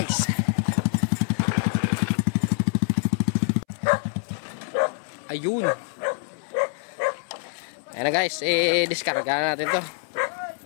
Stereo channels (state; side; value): silent; right; 62 dB below the other